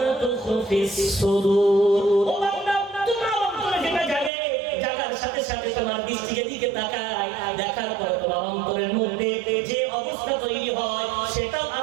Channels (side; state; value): left; drops out; at 4.3 s